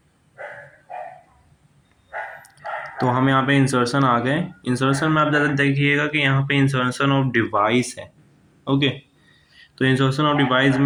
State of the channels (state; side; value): identical; both; correlation 1.00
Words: तो हम यहाँ पे इंसर्शन आ गए। इंसर्शन में आप ज़्यादा देखिएगा कि यहाँ पे इंसर्शन ऑफ डिवाइस है। ओके, तो इंसर्शन ऑफ डिवाइस